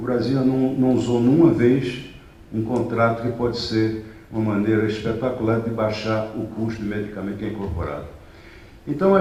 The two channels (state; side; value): identical; both; correlation 1.00